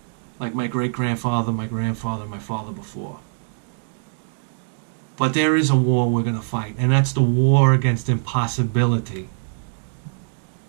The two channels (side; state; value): left; silent; digital silence